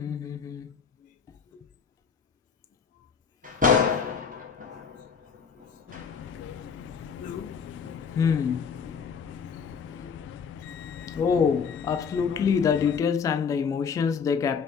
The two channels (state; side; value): quieter; right; 6.3 dB